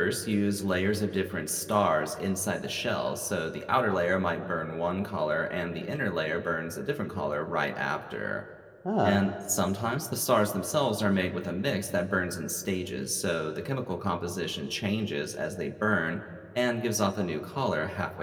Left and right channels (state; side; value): identical; both; correlation 1.00